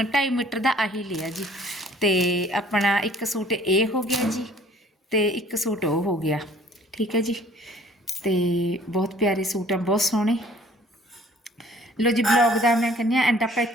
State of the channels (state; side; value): normal; both; correlation 0.55